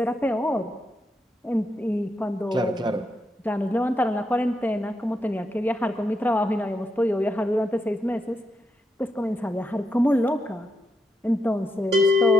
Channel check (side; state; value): both; normal; correlation 0.82